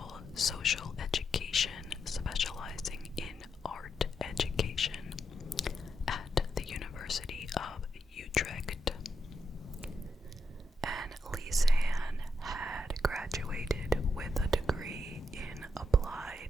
social education, specializing in art education at the University of Utrecht. And Lisanne had graduated with a degree in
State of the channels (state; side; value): normal; both; correlation 0.82